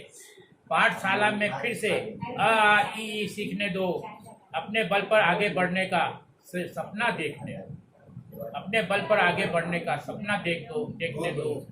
पाठशाला में फिर से अ आ इ ई सीखने दो। अपने बल पर आगे बढ़ने का सपना देखने दो, अपने बल पर आगे बढ़ने का सपना देखने दो।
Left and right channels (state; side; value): identical; both; correlation 1.00